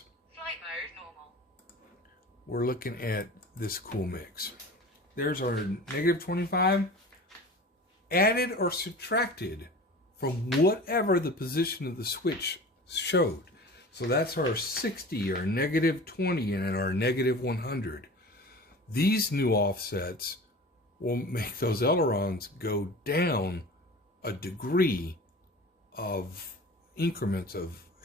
Flight mode normal. we're looking at this cool mix. There's our negative 25, added or subtracted from whatever the position of the switch showed. So that's our 60, our negative 20, and our negative 100. These new offsets will make those ailerons go down a degree of increments of,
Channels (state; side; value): normal; both; correlation 0.38